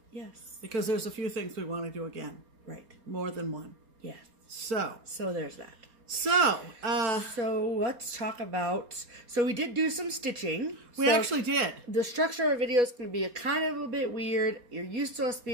Yes. Because there's a few things we want to do again. Right. More than one. Yes. So there's that. So let's talk about, we did do some stitching. We actually did. The structure of our video is going to be kind of a bit weird. You're used to us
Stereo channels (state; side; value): late; left; 4.3 ms